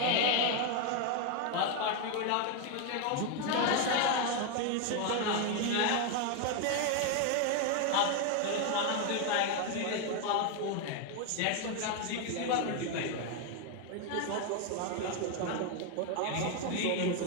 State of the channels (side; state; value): both; different; correlation 0.01